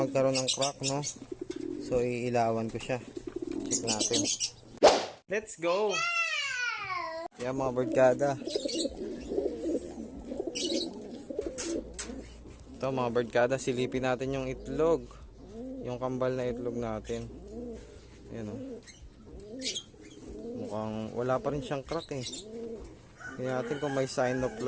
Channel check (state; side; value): identical; both; correlation 1.00